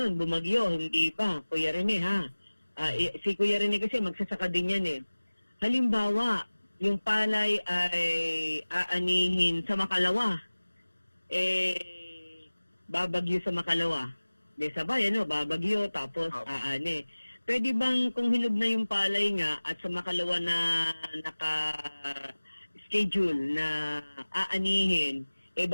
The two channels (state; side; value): inverted; both; correlation -1.00